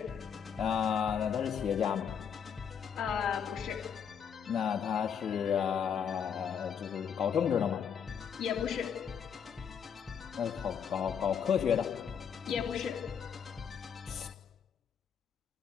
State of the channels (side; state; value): right; quieter; 7.5 dB